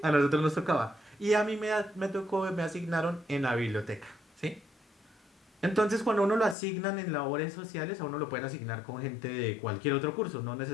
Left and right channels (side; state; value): right; drops out; at 6.6 s